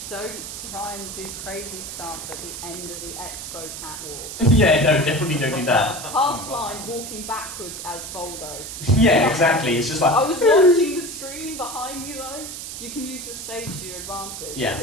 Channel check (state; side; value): noise; right; hiss, 9 dB below the sound